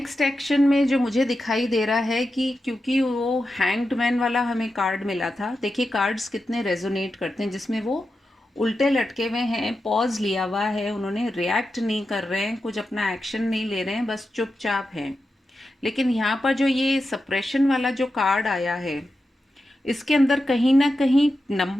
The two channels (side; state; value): both; normal; correlation 0.90